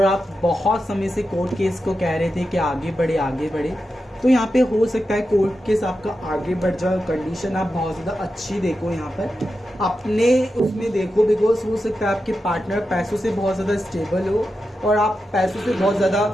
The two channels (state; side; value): normal; both; correlation 0.90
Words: आप बहुत समय से कोर्ट केस को कह रहे थे कि आगे बढ़े आगे बढ़े, तो यहाँ पे हो सकता है कोर्ट केस आपका आगे बढ़ जाए। कंडीशन आप बहुत ज़्यादा अच्छी देखो, यहाँ पर अपने उसमें देखो, बिकॉज हो सकता है आपके पार्टनर पैसों से बहुत ज़्यादा स्टेबल हो और आप पैसों से बहुत ज़्यादा